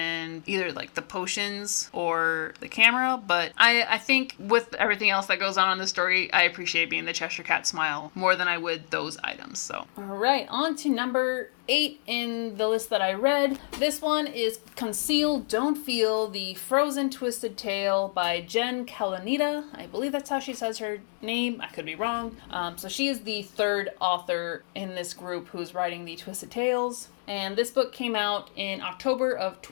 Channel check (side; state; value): right; silent; digital silence